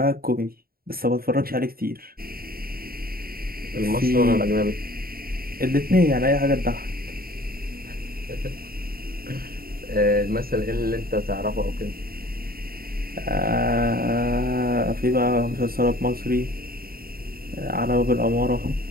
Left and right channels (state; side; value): late; left; 0.43 ms